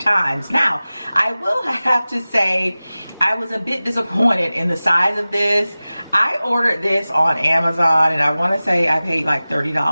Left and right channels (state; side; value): inverted; both; correlation -0.97